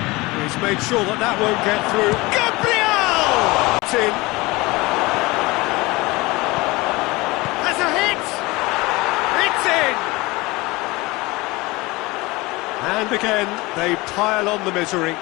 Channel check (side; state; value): right; quieter; 22.4 dB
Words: He's made sure that that won't get through. Gabriel! It's in. Has a hit! It's in! And again, they pile on the misery.